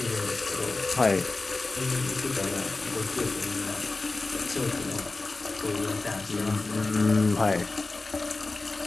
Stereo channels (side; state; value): right; quieter; 3.4 dB